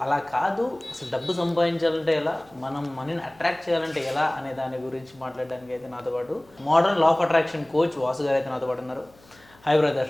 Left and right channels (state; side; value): noise; left; hum, 28 dB below the sound